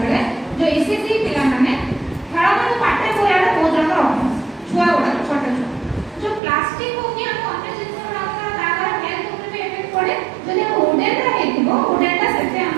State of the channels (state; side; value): drops out; left; at 6.4 s